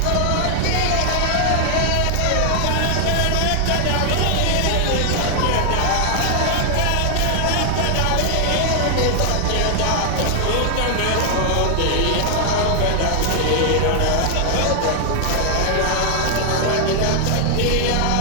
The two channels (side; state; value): both; different; correlation 0.00